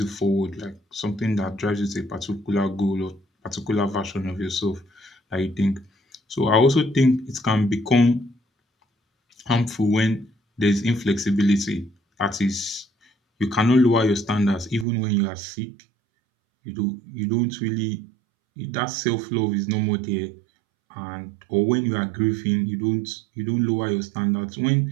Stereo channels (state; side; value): drops out; left; at 14.9 s